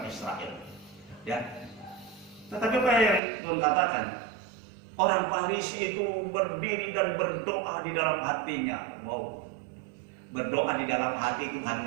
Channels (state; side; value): drops out; left; at 3.2 s